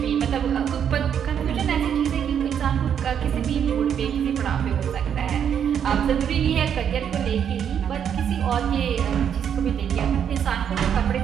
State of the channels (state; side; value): quieter; left; 8.4 dB